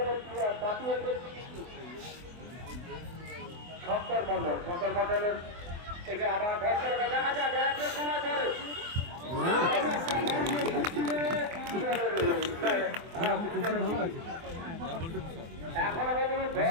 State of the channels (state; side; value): late; left; 24 ms